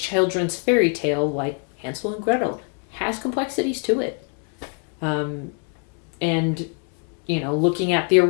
fairy tale like Hansel and Gretel has complexities to it. And looking at the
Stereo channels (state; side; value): quieter; right; 39.4 dB